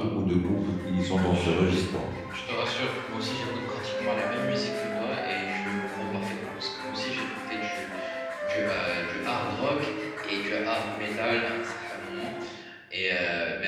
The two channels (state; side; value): identical; both; correlation 1.00